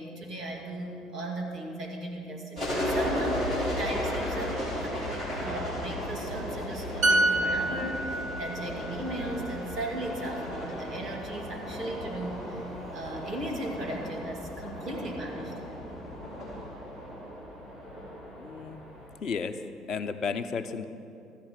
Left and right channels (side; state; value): both; normal; correlation 0.61